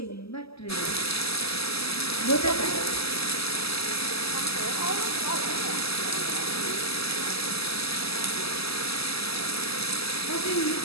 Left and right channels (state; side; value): late; right; 0.78 ms